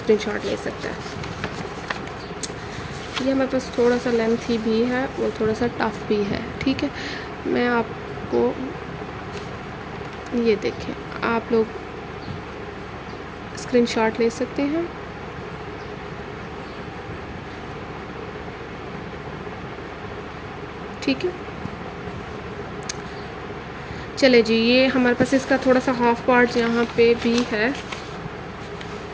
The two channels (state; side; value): identical; both; correlation 1.00